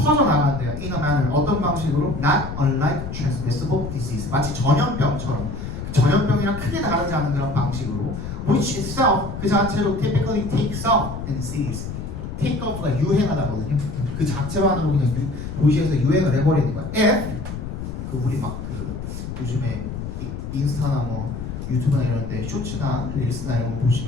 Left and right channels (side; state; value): left; noise; rumble, 7 dB below the sound